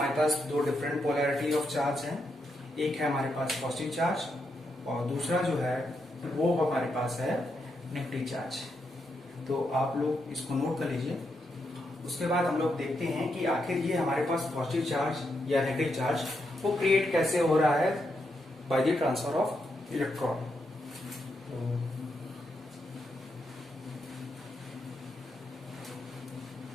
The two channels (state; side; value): normal; both; correlation 0.82